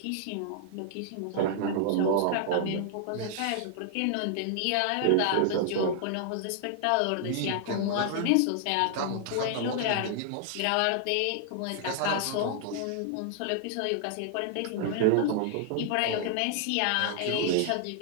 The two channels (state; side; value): different; both; correlation 0.00